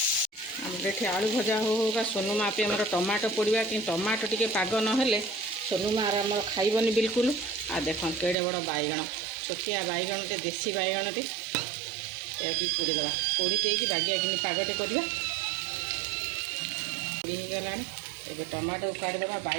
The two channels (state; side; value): drops out; left; at 8.3 s